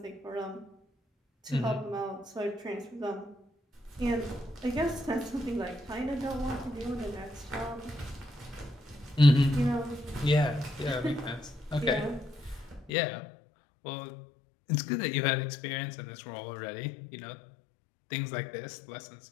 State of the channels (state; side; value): drops out; right; at 12.9 s